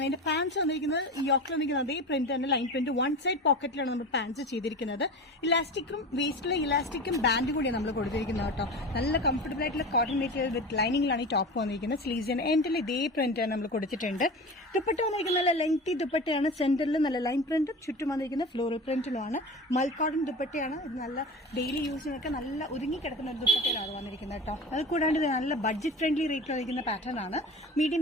ഇതിന്റെ പാൻസ് വന്നിരിക്കുന്നത് യോക്കിൽ വന്നിരിക്കുന്നത് അതേ പ്രിന്റ് തന്നെ, ലൈൻ പ്രിന്റ്. വൺ സൈഡ് പോക്കറ്റിലാണ് നമ്മൾ പാൻസ് ചെയ്തിരിക്കുന്നത്. ഇലാസ്റ്റിക്കും വേസ്റ്റിലെ ഇലാസ്റ്റിക്കും ബാൻഡ് കൂടിയാണ് നമ്മൾ കൊടുത്തിരിക്കുന്നത് കേട്ടോ. നല്ല കംഫർട്ടബിൾ ആയിട്ടുള്ള കോട്ടൺ മെറ്റീരിയൽ വിത്ത് ലൈനിങ്ങിലാണ് ഈ ടോപ്പ് വന്നിരിക്കുന്നത്. സ്ലീവ്സിന് എൻഡിൽ ഇതേ പ്രിന്റ് നമ്മൾ കൊടുത്തിട്ടുണ്ട്. ദുപ്പട്ട വന്നിരിക്കുന്നത് നല്ല ലെങ്തി ദുപ്പട്ടയാണ്. സെന്ററിൽ നല്ല ലൈൻ പ്രിന്റും ചുറ്റും വന്നിരിക്കുന്ന ഫ്ലോറൽ പ്രിന്റിലുമാണ്. മൽ കോട്ടൺ ദുപ്പട്ടയാണ്. ഇത് നല്ല ഡെയിലി യൂസിനൊക്കെ നല്ല ഒതുങ്ങി കിടക്കുന്ന ഒരു ദുപ്പട്ടയിലാണ് വന്നിരിക്കുന്നത് കേട്ടോ. അത് കൂടാണ്ട് ഇത് നല്ല ബഡ്ജറ്റ് ഫ്രണ്ട്ലി റേറ്റിൽ വന്നിരിക്കുന്ന പാറ്റേൺ ആണ്.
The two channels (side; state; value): both; normal; correlation 0.31